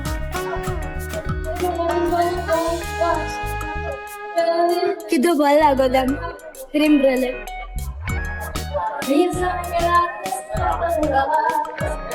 किती बल लागोदा cream Brouillette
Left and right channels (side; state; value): both; identical; correlation 1.00